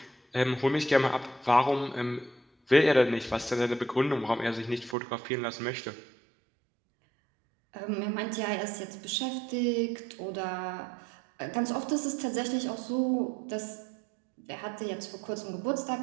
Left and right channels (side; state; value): left; drops out; at 5.0 s